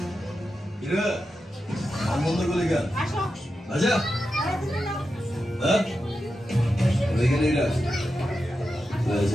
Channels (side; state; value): both; normal; correlation 0.90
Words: 이래 안 먹는 거니까 맞아? 어? 왜 그래? Well, it's